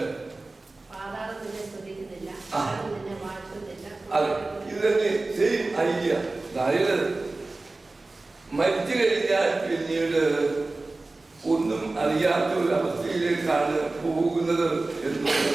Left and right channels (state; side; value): quieter; left; 3.2 dB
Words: അതെ, ഇത് തന്നെ സെയിം ഐഡിയ. അതായത് മരിച്ചു കഴിഞ്ഞാൽ പിന്നീട് ഒന്നും അറിയാത്ത ഒരു അവസ്ഥയിലേക്കാണ് പോകുന്നത്